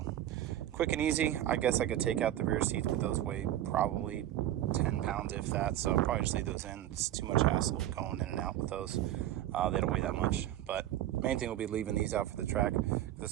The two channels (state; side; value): quieter; left; 12.8 dB